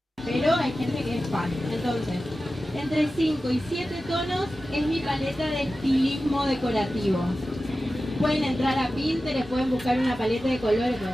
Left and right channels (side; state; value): both; normal; correlation 0.94